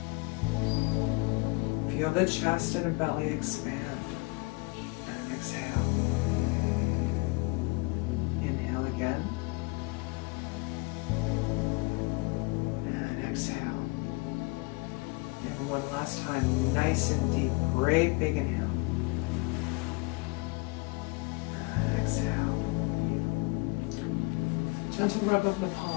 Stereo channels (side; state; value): right; quieter; 27.8 dB